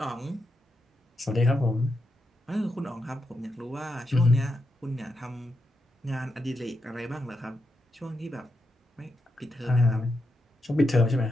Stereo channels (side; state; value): both; normal; correlation 0.85